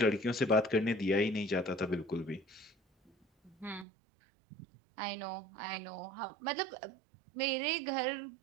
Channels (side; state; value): left; drops out; at 3.9 s